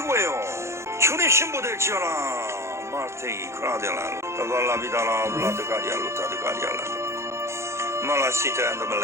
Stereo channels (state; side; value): late; left; 0.13 ms